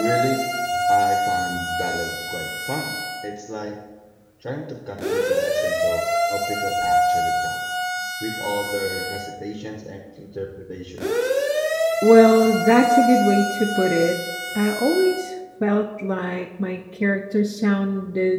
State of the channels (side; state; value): both; identical; correlation 1.00